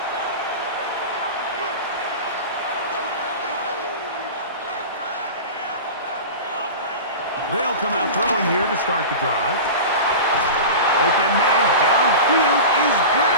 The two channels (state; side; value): inverted; both; correlation -0.30